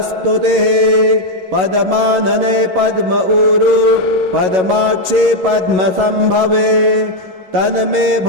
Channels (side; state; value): left; late; 11 ms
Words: पद्मानने पद्म ऊरु पद्माक्षे पद्मसम्भवे तन्मे